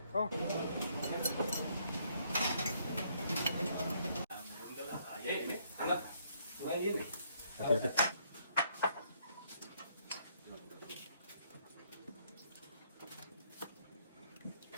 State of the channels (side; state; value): both; inverted; correlation -0.69